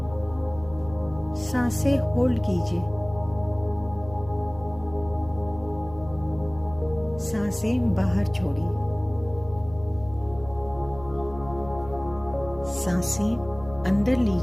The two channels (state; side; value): noise; left; hum, 17 dB below the sound